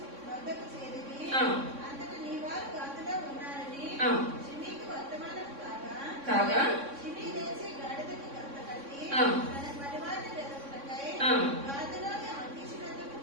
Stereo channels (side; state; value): left; late; 3.6 ms